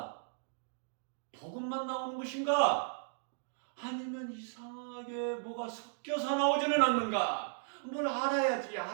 복음만 나오는 것인가? 아니면 이상하게 뭐가 섞여서 나오지는 않는가? 뭘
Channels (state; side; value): silent; left; digital silence